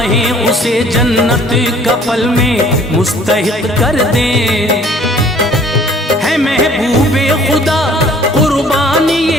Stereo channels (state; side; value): normal; both; correlation 0.55